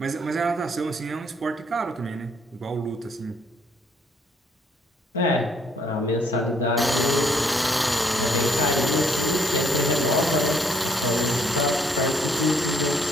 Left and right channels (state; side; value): normal; both; correlation 0.67